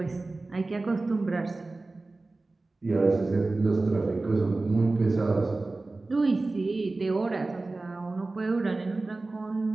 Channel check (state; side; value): quieter; left; 3.3 dB